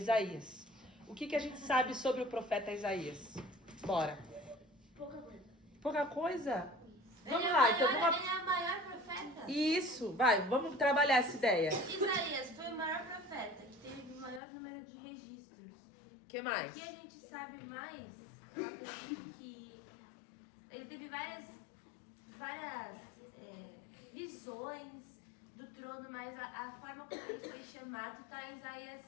O que a gente sabe sobre o profeta Isaías? Bora. Pouca coisa. Pouca coisa? Vamos Ele lá, é então vamos... Ele é o maior profeta. Isso, vai, vamos trabalhar essa ideia. Isaías foi o maior profeta, que teve o maior número de registros. O que mais? O que a gente sabe mais, eu acredito que ele teve várias visões do trono, mas a forma como ele foi chamado está em Isaías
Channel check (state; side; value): drops out; right; at 14.4 s